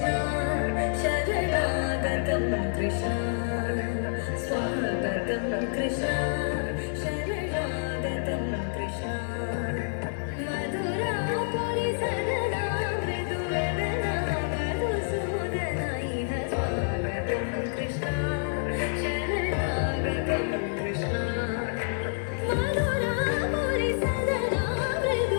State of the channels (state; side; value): silent; right; digital silence